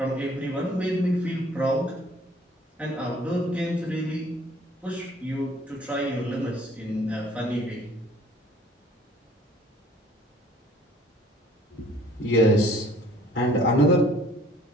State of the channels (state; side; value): normal; both; correlation 0.56